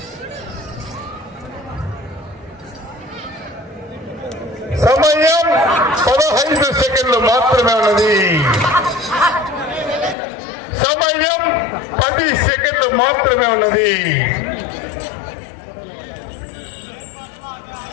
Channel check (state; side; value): drops out; right; at 10.2 s